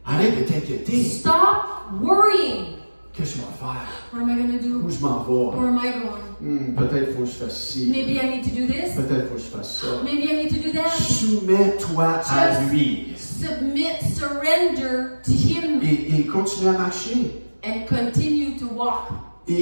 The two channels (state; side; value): inverted; both; correlation -1.00